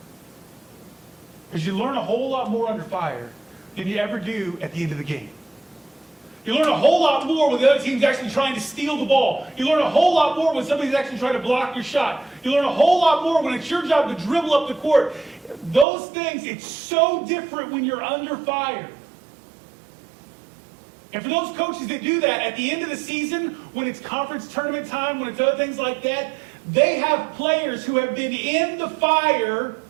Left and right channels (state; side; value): drops out; left; at 15.9 s